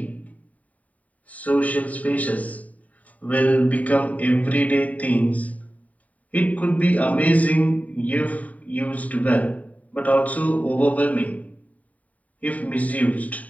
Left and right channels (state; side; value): late; right; 0.070 ms